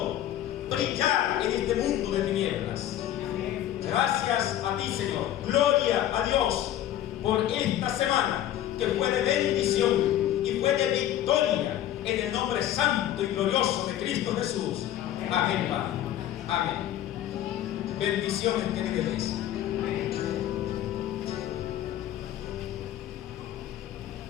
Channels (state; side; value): quieter; right; 12.2 dB